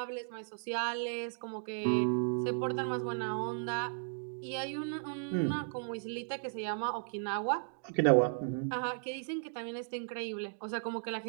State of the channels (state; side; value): silent; left; digital silence